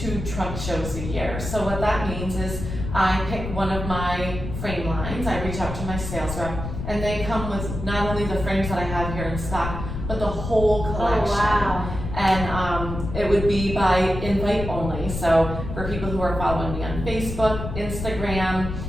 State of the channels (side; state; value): left; noise; rumble, 6 dB below the sound